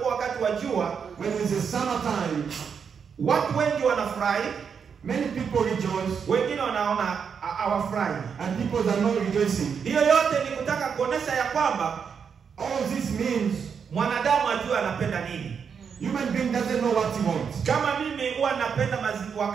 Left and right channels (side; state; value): left; quieter; 6.6 dB